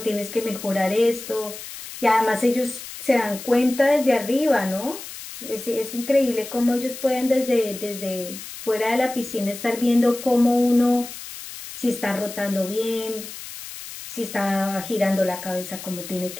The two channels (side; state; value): left; noise; hiss, 12 dB below the sound